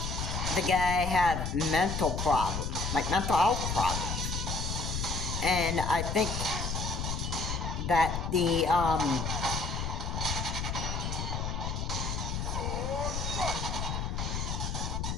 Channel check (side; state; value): left; noise; rumble, 2 dB below the sound